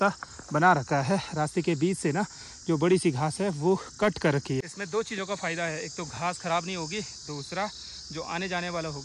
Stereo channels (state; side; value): identical; both; correlation 1.00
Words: बना रखा है। रास्ते के बीच से ना जो बड़ी सी घास है वो कट कर रखी है। इसमें 2 चीज़ों का फ़ायदा है, एक तो घास ख़राब नहीं होगी, दूसरा जो आने जाने वाला